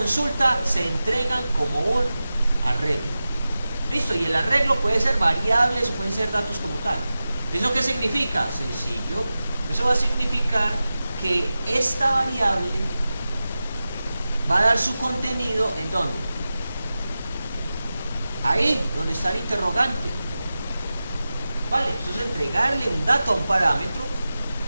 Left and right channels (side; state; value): both; inverted; correlation -0.95